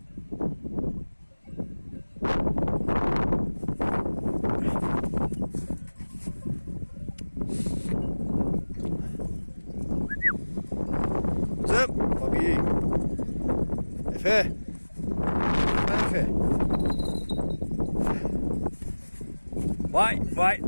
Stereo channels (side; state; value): both; inverted; correlation -1.00